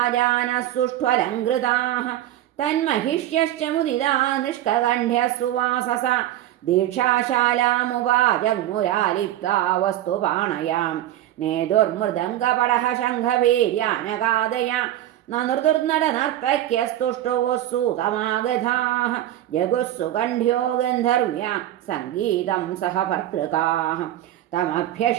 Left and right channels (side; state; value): left; quieter; 13.2 dB